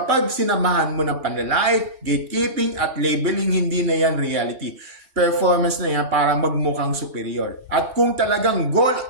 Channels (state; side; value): late; left; 3.1 ms